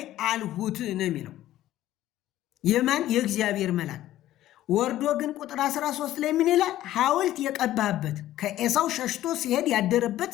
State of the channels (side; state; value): right; quieter; 13.9 dB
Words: አልሁት ነው የሚለው። የማን? የእግዚአብሔር መልአክ። ወርዶ ግን ቁጥር 13 ላይ ምን ይላል? ሐውልት የቀባህበት ከኤሳው ሸሽቶ ሲሄድ ያደረበት